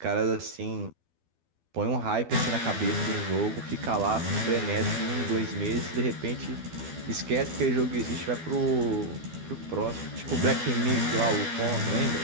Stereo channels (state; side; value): late; left; 12 ms